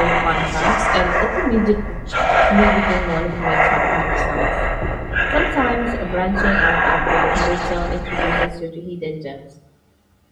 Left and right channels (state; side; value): identical; both; correlation 1.00